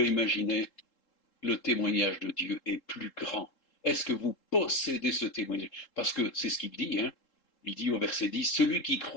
imaginer? Le témoignage de Dieu est plus grand. Est-ce que vous possédez ce témoignage? Parce que c'est ce qu'il dit, hein. Il dit au verset 10, celui qui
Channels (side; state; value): right; late; 3.7 ms